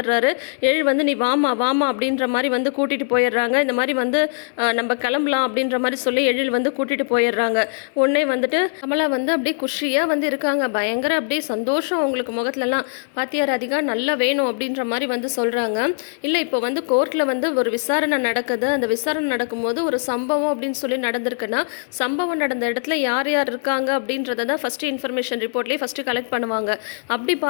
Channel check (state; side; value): silent; right; digital silence